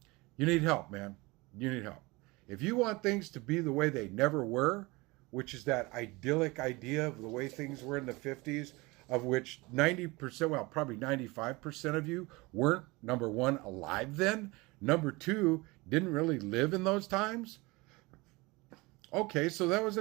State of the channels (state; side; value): quieter; left; 23.8 dB